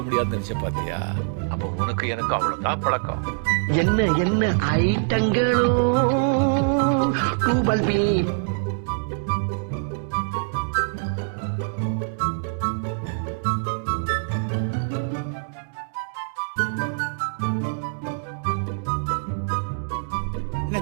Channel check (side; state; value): left; silent; digital silence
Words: முடியாதுன்னு நினைச்ச பாத்தியா? அப்ப உனக்கு எனக்கு அவ்வளவுதான் பழக்கம். என்ன என்ன ஐட்டங்களோ டூபல் பி.